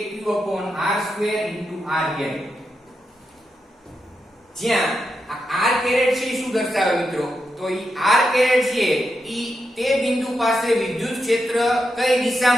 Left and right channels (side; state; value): both; normal; correlation 0.85